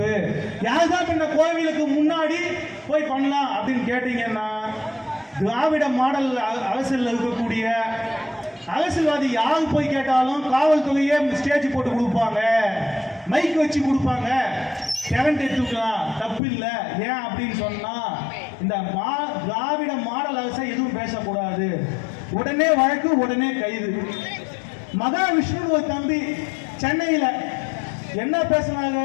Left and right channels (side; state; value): right; drops out; at 16.4 s